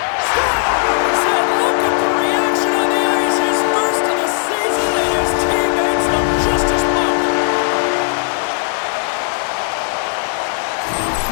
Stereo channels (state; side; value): silent; right; 58 dB below the other